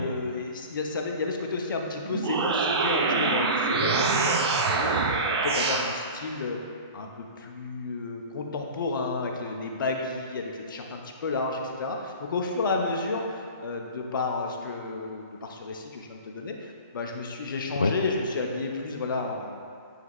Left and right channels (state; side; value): inverted; both; correlation -0.33